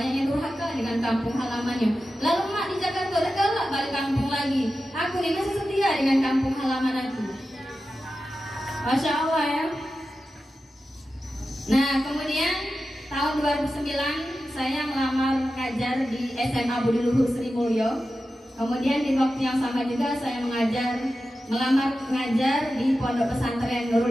yang durhaka dengan kampung halamannya. Lalu mak di Jakarta udah galak balik kampung lagi. Aku ini masih setia dengan kampung halaman aku. Masya Allah ya. Nah kemudian tahun 2009 saya melamar ngajar di SMA Budi Luhur Sri Mulyo. Kemudian di waktu yang sama juga saya melamar ngajar di Pondok Pesantren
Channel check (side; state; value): both; normal; correlation 0.92